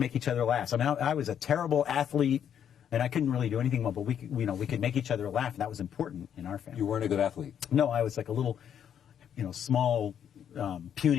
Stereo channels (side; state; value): right; quieter; 8.9 dB